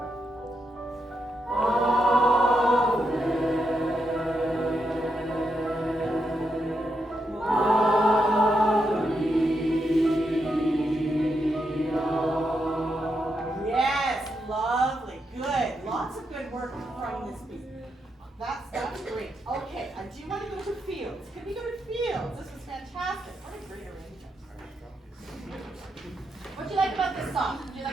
Yes, lovely, good. Lots of good work from this piece. That's great. Okay, I do want to go to fields. Can we go to fields? This was fantastic. What a great arrangement. What do you like about this song? Do you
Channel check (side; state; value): both; normal; correlation 0.83